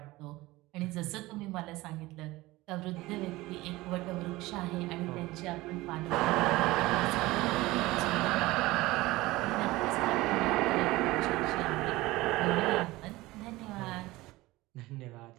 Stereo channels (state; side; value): quieter; left; 19.4 dB